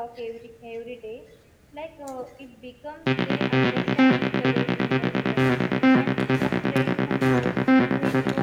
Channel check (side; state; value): both; identical; correlation 1.00